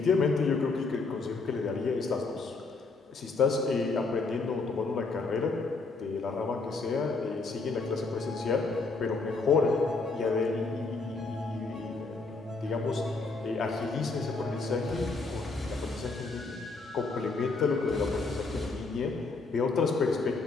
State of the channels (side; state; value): right; quieter; 3.8 dB